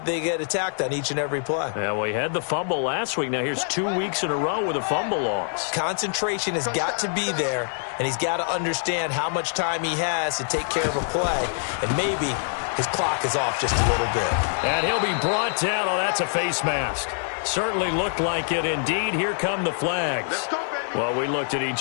they get attacked on each and every play. Yeah, well, he had the fumble last week. Now here's 2 weeks in a row with a fumble loss. Concentration has got to be there, and he's got to understand how much time he has to take care of a play, and maybe his clock is off just a little bit. And he'll be brought down. Oh, that's a face mask. Certainly looked like it. Indeed, here come the flags. Well, we looked at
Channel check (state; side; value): silent; right; 62 dB below the other